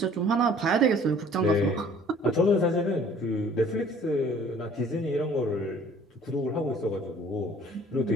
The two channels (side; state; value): both; normal; correlation 0.53